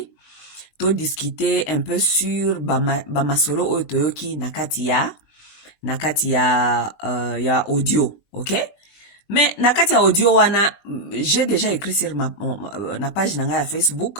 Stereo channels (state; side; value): late; right; 19 ms